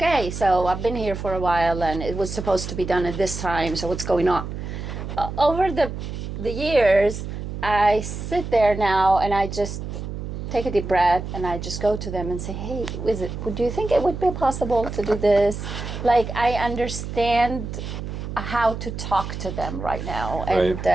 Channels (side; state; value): right; noise; hum, 7 dB below the sound